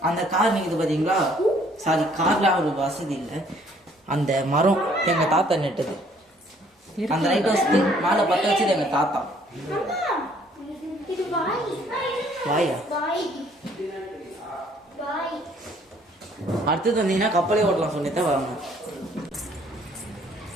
அந்த கார் நிக்குது பாத்தீங்களா? சாரி, கார்ல ஒரு வசதி இல்லை. அந்த மரம் எங்க தாத்தா நெட்டது. அந்த லைட் ஹவுஸ்க்கு மேல பத்த வச்சது எங்க தாத்தா. இது வாய். வாயா? வாய். வாய். அடுத்தது வந்தீங்கன்னா கப்பலே ஓட்டலாம் சொல்லித்தான் வாங்க.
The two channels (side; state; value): both; normal; correlation 0.61